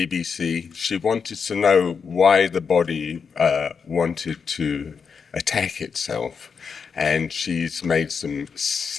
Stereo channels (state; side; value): quieter; right; 6.0 dB